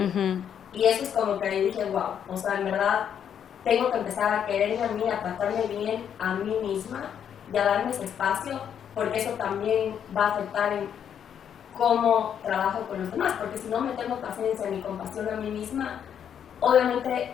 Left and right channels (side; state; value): right; quieter; 8.6 dB